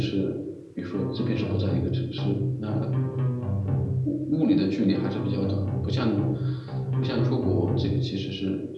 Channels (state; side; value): identical; both; correlation 1.00